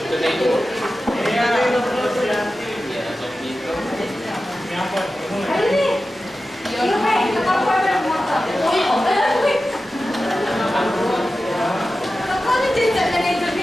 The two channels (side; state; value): both; normal; correlation 0.94